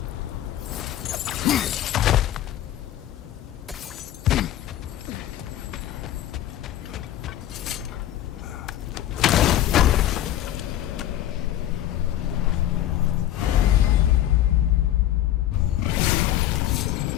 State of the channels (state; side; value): quieter; right; 12.7 dB